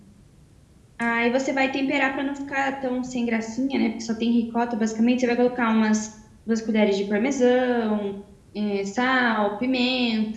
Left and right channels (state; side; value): identical; both; correlation 1.00